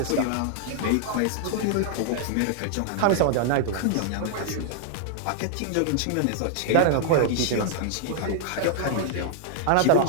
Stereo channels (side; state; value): both; different; correlation -0.01